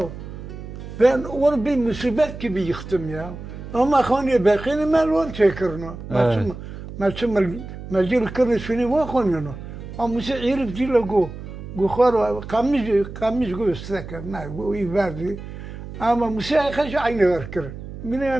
ben onu bir musibet gibi yıktım ya. Ama hani bekini melon çekirno. Mecil kırını şunu var konuyor. Ama mesela herif değil o. Gukhar kamış gösterken ne bu iyi verdi. Ama mesela kaç aynı verkir. Mine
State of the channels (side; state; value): right; noise; hum, 11 dB below the sound